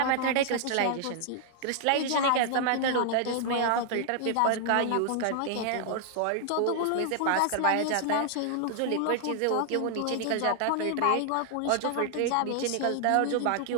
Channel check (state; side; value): different; both; correlation 0.00